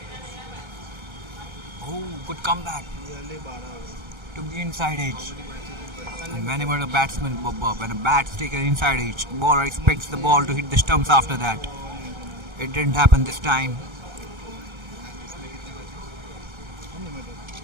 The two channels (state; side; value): late; left; 1.3 ms